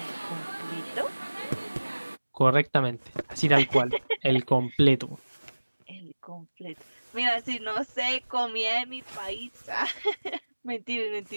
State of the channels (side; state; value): both; inverted; correlation -1.00